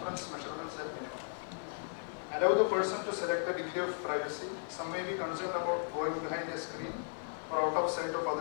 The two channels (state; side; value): silent; right; 54 dB below the other